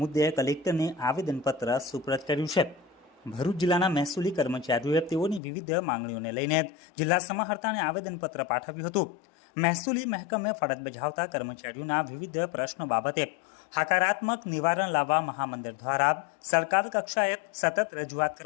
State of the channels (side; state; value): right; drops out; at 5.4 s